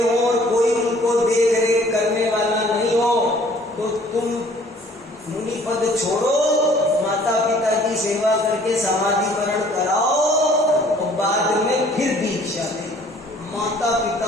और कोई उनको देख रेख करने वाला नहीं हो, तो तुम मुनि पद छोड़ो, माता पिता की सेवा करके समाधिकरण कराओ और बाद में फिर दीक्षा दे। माता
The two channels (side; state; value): both; normal; correlation 0.55